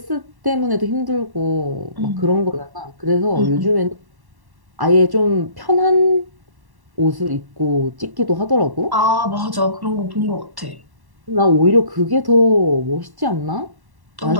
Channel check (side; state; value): left; late; 1.1 ms